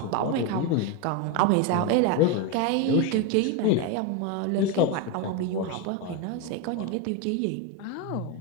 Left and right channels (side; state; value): both; different; correlation 0.03